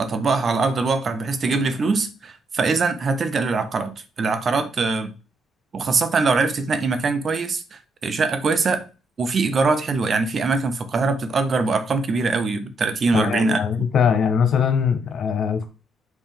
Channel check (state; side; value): normal; both; correlation 0.76